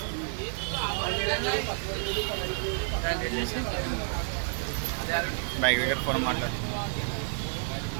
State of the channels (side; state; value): left; silent; digital silence